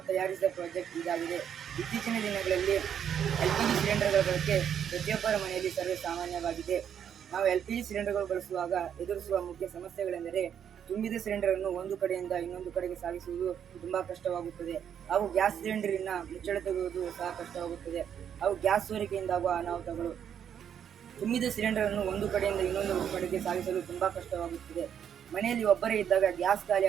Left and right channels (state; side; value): quieter; left; 8.7 dB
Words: ತಯಾರಿಸಿದ ಪ್ರಾಜೆಕ್ಟ್ ಇದಾಗಿದೆ. ಇತ್ತೀಚಿನ ದಿನಗಳಲ್ಲಿ LPG ಸಿಲಿಂಡರ್ಗಳ ಬಳಕೆ ಪ್ರತಿಯೊಬ್ಬರ ಮನೆಯಲ್ಲಿ ಸರ್ವೇ ಸಾಮಾನ್ಯವಾಗಿದೆ. ನಾವು LPG ಸಿಲಿಂಡರ್ಗಳು ಬಳಸುವಾಗ ಎದುರಿಸುವ ಮುಖ್ಯ ಸಮಸ್ಯೆಗಳೆಂದರೆ ತುಂಬಿದ ಸಿಲಿಂಡರನ್ನು ಒಂದು ಕಡೆಯಿಂದ ಇನ್ನೊಂದು ಕಡೆಗೆ ಸಾಗಿಸುವುದು ತುಂಬಾ ಕಷ್ಟವಾಗುತ್ತದೆ. ಹಾಗೂ ಗ್ಯಾಸ್ ಸಿಲಿಂಡರಿನ ಮುಚ್ಚಳ ತೆಗೆಯುವುದು ಸಹ ಕಷ್ಟವಾಗುತ್ತದೆ. ಹಾಗೂ ಗ್ಯಾಸ್ ಸೋರಿಕೆಯಿಂದಾಗುವ ಅನಾಹುತಗಳು. ತುಂಬಿದ ಸಿಲಿಂಡರನ್ನು ಒಂದು ಕಡೆಯಿಂದ ಇನ್ನೊಂದು ಕಡೆಗೆ ಸಾಗಿಸಲು ತುಂಬಾ ಕಷ್ಟವಾಗುತ್ತದೆ. ಮನೆಯಲ್ಲಿ ಒಬ್ಬರೇ ಇದ್ದಾಗ ಗ್ಯಾಸ್ ಖಾಲಿ